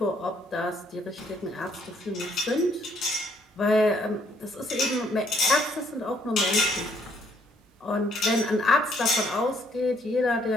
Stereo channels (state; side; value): normal; both; correlation 0.67